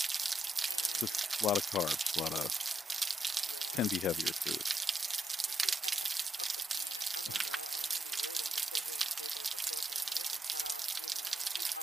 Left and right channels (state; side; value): normal; both; correlation 0.81